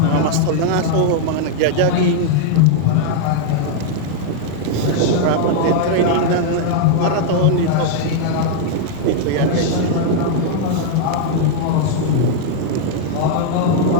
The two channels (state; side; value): different; both; correlation -0.01